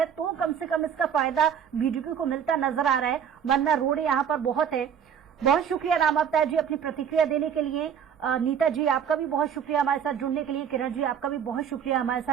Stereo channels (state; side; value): quieter; left; 8.1 dB